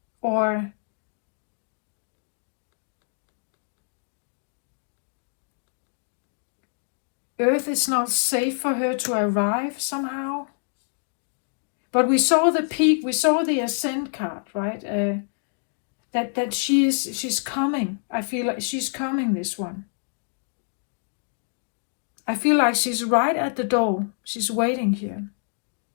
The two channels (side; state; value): right; silent; digital silence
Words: or Earth is not safe for her to arrive somehow. But we saw the peak, we saw the ascent card, right? That she's coming. I feel like she's coming, this one. I feel like she's right at the door. She's waiting here.